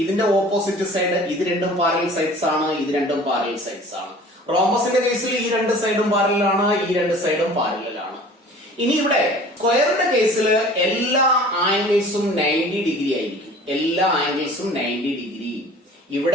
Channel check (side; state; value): both; normal; correlation 0.46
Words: ഇതിന്റെ ഓപ്പോസിറ്റ് സൈഡ്, ഇത് രണ്ടും പാരലൽ സൈഡ്സ് ആണ്, ഇത് രണ്ടും പാരലൽ സൈഡ്സ് ആണ്. റോംബസിന്റെ കേസിൽ ഈ 2 സൈഡും പാരലൽ ആണ്, ഈ 2 സൈഡും പാരലൽ ആണ്. ഇനി ഇവിടെ സ്ക്വയറിന്റെ കേസിൽ എല്ലാ ആംഗിൾസും 90 ഡിഗ്രി ആയിരിക്കും. എല്ലാ ആംഗിൾസും 90 ഡിഗ്രി.